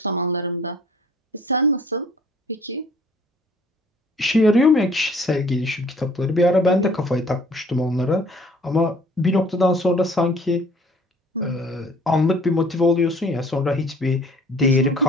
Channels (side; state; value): both; normal; correlation 0.54